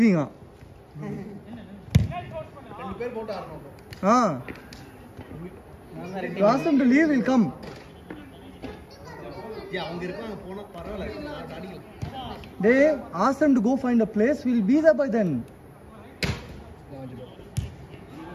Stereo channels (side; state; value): both; identical; correlation 1.00